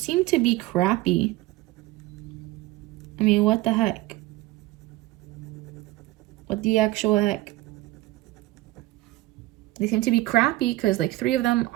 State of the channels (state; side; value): quieter; left; 18.3 dB